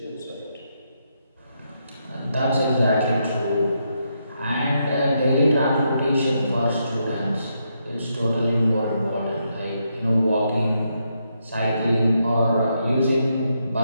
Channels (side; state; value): both; inverted; correlation -0.80